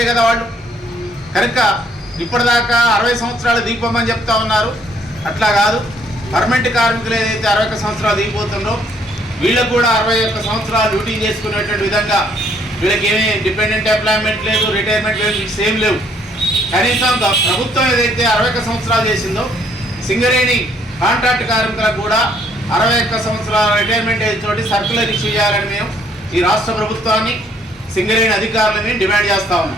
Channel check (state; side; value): normal; both; correlation 0.65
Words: కదా వాళ్ళు. కనుక ఇప్పటిదాకా 60 సంవత్సరాలు దిగిపోమని చెప్తా ఉన్నారు. అట్లా కాదు, పర్మనెంట్ కార్మికులు ఏదైతే 61 సంవత్సరాలు దిగిపోతుందో వీళ్ళకు కూడా 61 సంవత్సరాలు డ్యూటీ చేసుకునేటువంటి విధంగా వీళ్ళకి ఏమీ డిపెండెంట్ ఎంప్లాయ్మెంట్ లేదు, రిటైర్మెంట్ లేదు, సేమ్ లేవు. కనీసం ప్రభుత్వం ఏదైతే 61 సంవత్సరాలు చేసిందో సింగరేణి కాంట్రాక్ట్ కార్మికులకు కూడా 61 సంవత్సరాల రిటైర్మెంట్ ఏజ్ తోటి సర్క్యులర్ ఇష్యూ చేయాలని మేము ఈ రాష్ట్ర ప్రభుత్వాన్ని సింగరేణి అధికారులని డిమాండ్ చేస్తా